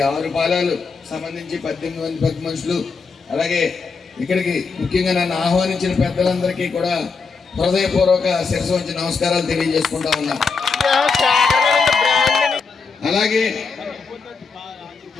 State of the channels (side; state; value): right; quieter; 4.8 dB